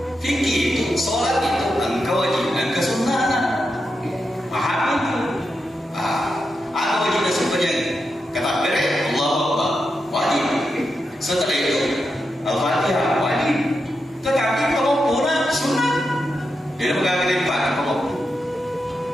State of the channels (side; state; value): both; normal; correlation 0.87